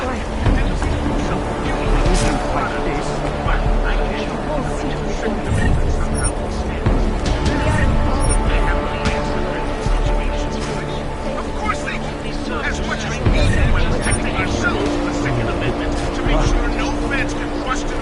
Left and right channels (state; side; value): identical; both; correlation 1.00